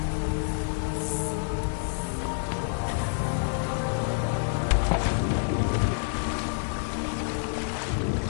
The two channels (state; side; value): silent; right; digital silence